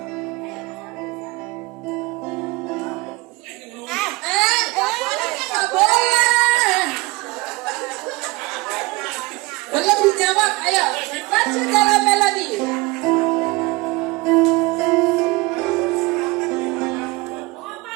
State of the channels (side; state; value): left; quieter; 23.1 dB